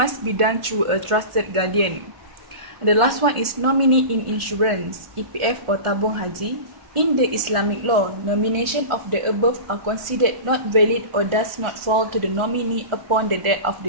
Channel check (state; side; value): late; left; 1.4 ms